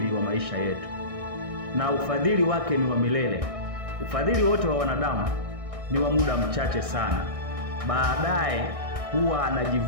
wa maisha yetu, na ufadhili wake ni wa milele. Ufadhili wote wa wanadamu ni wa muda mchache sana. Baadaye huwa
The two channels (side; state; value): left; late; 1.6 ms